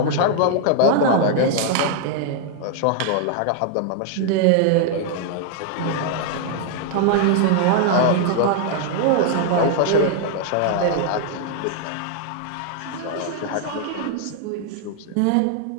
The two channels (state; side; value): different; both; correlation 0.00